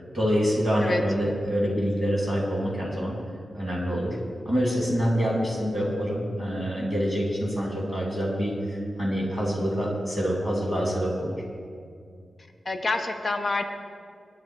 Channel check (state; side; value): normal; both; correlation 0.91